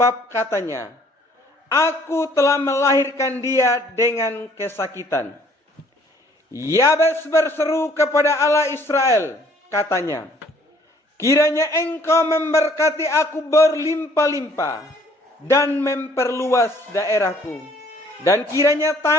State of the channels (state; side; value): normal; both; correlation 0.59